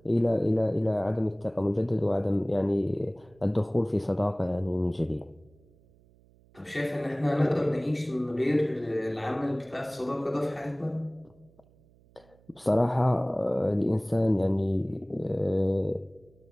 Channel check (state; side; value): noise; right; hum, 29 dB below the sound